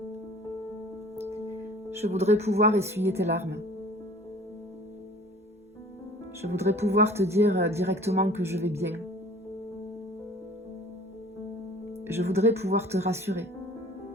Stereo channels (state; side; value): normal; both; correlation 0.48